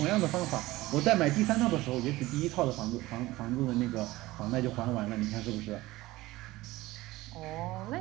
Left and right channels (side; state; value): left; quieter; 18.5 dB